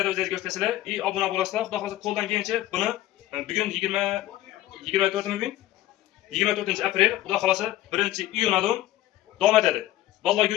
o'zingiz ko'rsatasizlar, obuna bo'lasizlar. Xudo xolasa qo'ldan kelgancha buni bugun 24 aprel, xudo xolasa 1-iyundan davom etadi. Vallahi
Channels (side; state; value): right; quieter; 14.7 dB